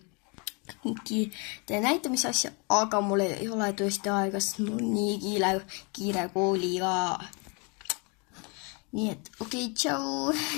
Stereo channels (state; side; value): quieter; right; 33.1 dB